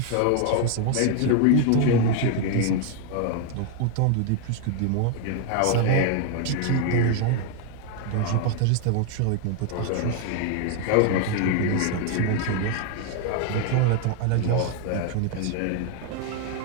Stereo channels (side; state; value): both; different; correlation 0.01